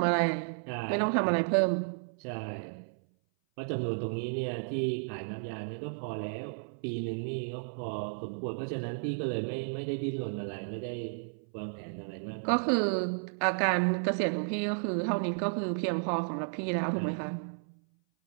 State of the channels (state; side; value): silent; left; 56 dB below the other